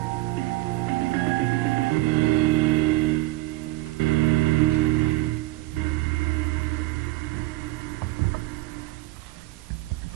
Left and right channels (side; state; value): left; quieter; 19.0 dB